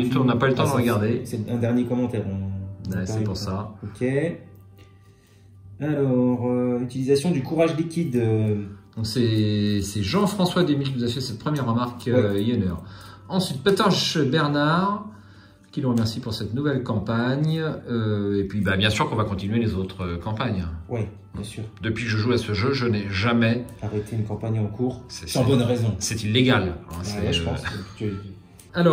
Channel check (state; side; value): identical; both; correlation 1.00